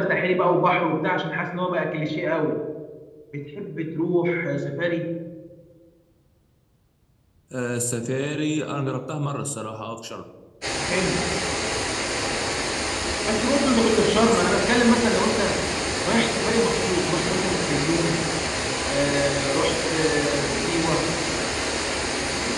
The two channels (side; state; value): both; identical; correlation 1.00